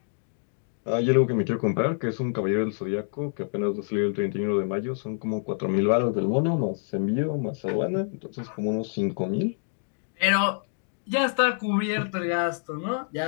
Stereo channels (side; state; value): right; silent; digital silence